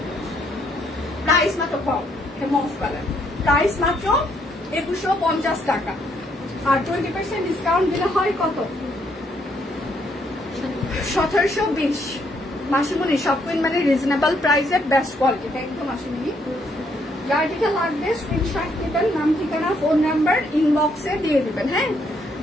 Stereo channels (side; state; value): both; normal; correlation 0.72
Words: প্রাইস মাত্র মফ কালার, প্রাইস মাত্র 2150 টাকা, আর 20% ডিসকাউন্ট দিলে হয় কত? 1720। মাসিমণি, সব কুইন মানে রিজনেবল প্রাইসে বেস্ট কোয়ালিটি। থ্যাংক ইউ মাসিমণি। যার যেটা লাগবে স্ক্রিনশট নেবেন, নাম ঠিকানা ফোন নাম্বার ইনবক্সে দিয়ে দিবেন। হ্যাঁ,